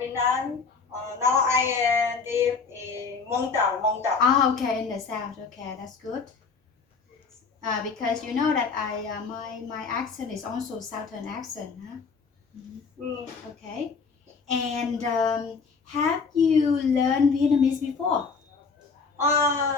Now I live in Mong Dao. Ah, okay, in the south. Okay, that's good. Because you know that my accent is also southern accent, huh? Okay. And have you learned Vietnamese before?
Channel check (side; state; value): right; quieter; 5.0 dB